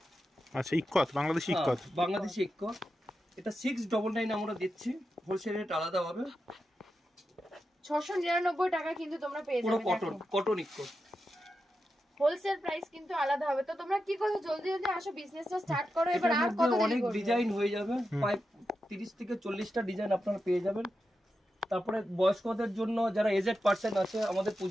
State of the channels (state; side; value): normal; both; correlation 0.89